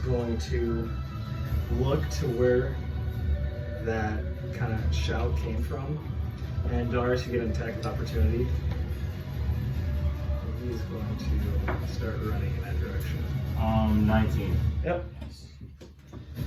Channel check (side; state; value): both; identical; correlation 1.00